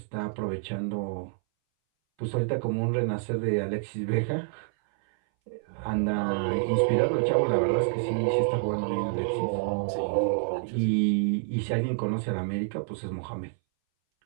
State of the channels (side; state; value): left; silent; 59 dB below the other